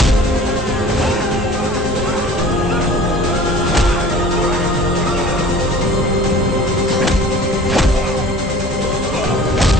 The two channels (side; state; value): both; normal; correlation 0.45